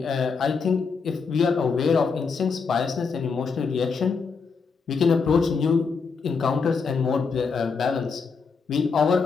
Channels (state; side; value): quieter; right; 5.2 dB